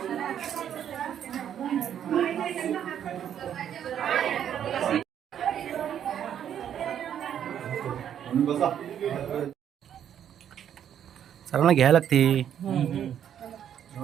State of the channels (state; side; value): quieter; left; 9.5 dB